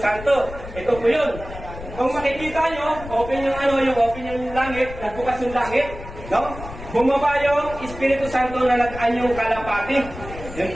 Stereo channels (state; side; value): noise; left; rumble, 12 dB below the sound